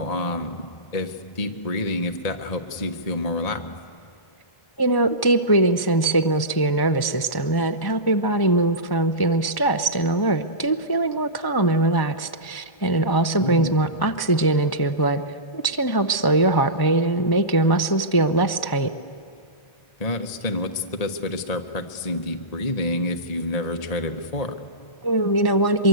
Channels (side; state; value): right; late; 1.1 ms